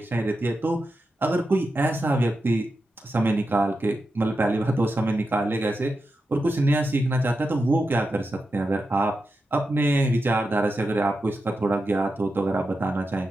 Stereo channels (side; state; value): both; normal; correlation 0.89